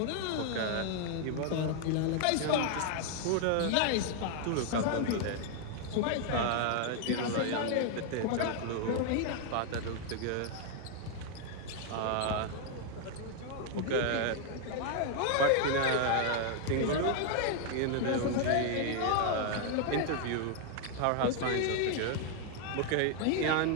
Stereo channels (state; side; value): different; both; correlation 0.00